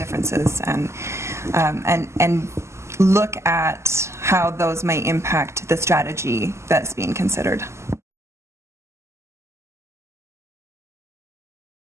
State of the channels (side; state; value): left; late; 0.13 ms